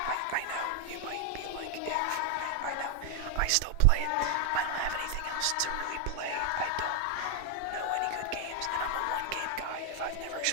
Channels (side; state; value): both; different; correlation 0.00